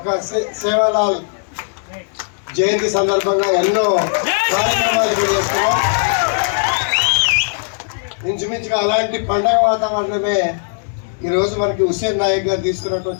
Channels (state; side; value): silent; right; digital silence